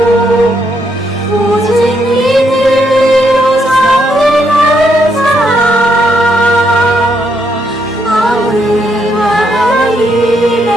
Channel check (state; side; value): normal; both; correlation 0.76